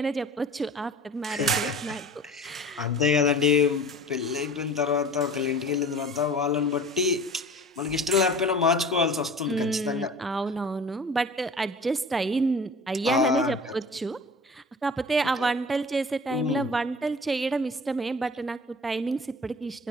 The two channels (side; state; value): both; normal; correlation 0.42